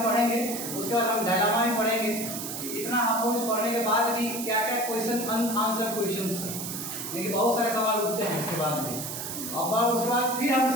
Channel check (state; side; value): noise; right; hiss, 6 dB below the sound